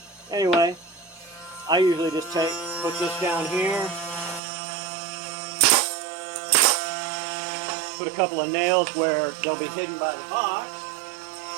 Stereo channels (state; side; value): drops out; left; at 4.4 s